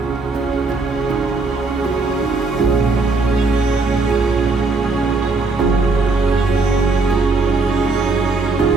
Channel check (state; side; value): quieter; left; 3.7 dB